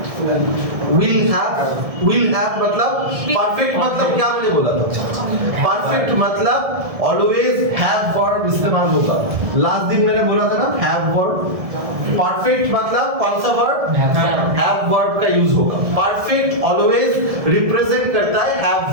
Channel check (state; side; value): late; left; 1.7 ms